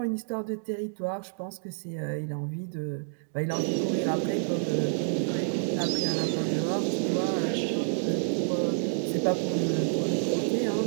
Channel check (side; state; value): left; silent; digital silence